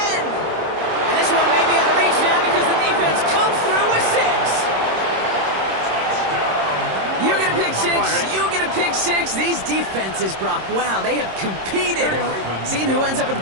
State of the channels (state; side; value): late; left; 26 ms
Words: And this one may be out of reach now because the defense comes through with 6. You get a pick 6. You get a pick 6. These defenses, Brock, wow, they have competed. Seeing who ends up with the